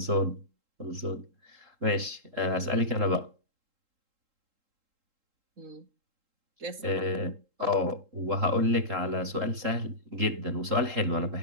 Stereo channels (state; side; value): late; left; 3.7 ms